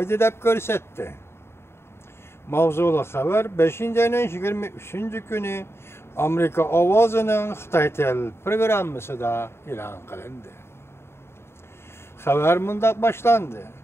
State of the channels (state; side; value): late; right; 0.12 ms